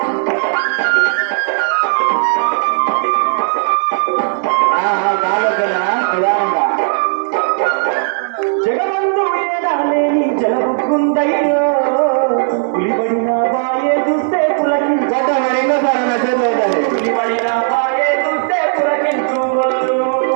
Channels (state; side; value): silent; left; digital silence